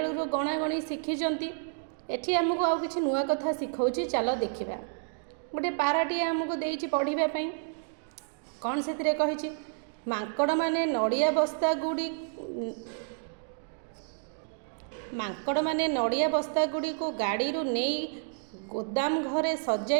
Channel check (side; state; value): left; silent; digital silence